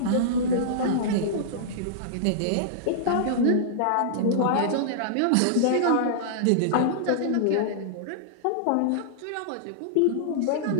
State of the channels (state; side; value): different; both; correlation -0.02